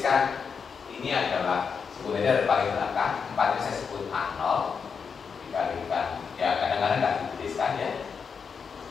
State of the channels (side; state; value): right; quieter; 6.0 dB